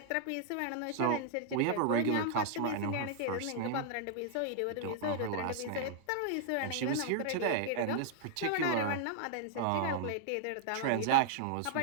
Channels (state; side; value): different; both; correlation -0.01